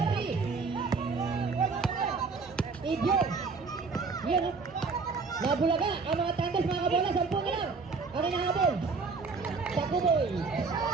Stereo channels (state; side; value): quieter; left; 4.6 dB